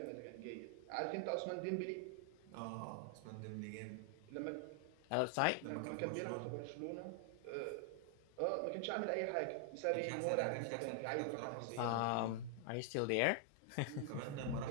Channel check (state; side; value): different; both; correlation 0.00